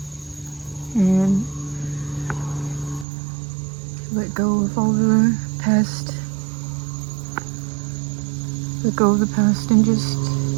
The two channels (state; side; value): drops out; left; at 3.1 s